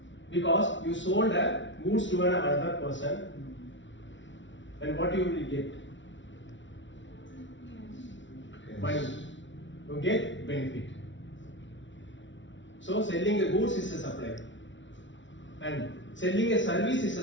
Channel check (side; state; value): right; late; 0.55 ms